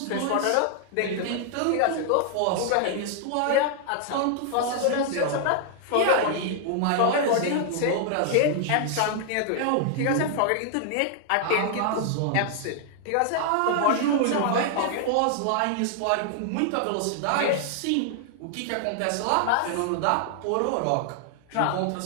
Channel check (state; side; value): different; both; correlation -0.01